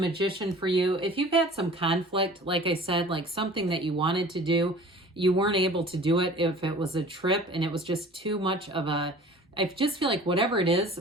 for you. If you've had some conflict, like I said, like something that you wanted to do, you weren't able to do it. If it was a trip and it was just too much of a, I just feel like whatever it is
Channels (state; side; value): normal; both; correlation 0.45